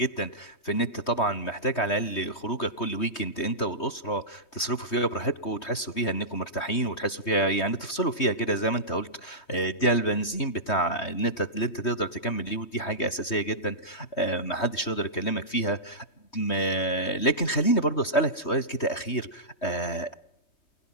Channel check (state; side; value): late; right; 3.2 ms